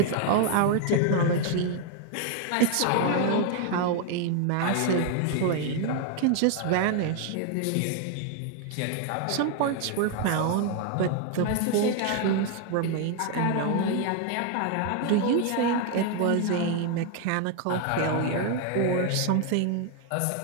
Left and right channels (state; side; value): different; both; correlation 0.01